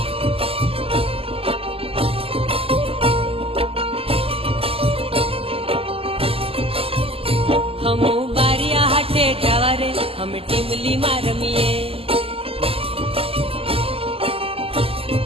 हमू बारिया हाटे जावा रे हम टीमली में रमीए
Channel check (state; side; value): late; left; 0.28 ms